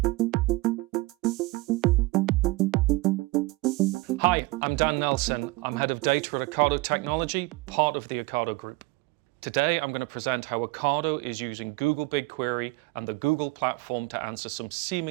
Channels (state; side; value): quieter; left; 21.9 dB